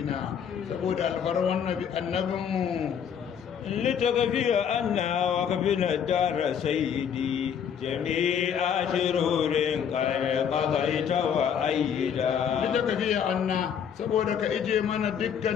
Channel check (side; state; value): right; quieter; 8.0 dB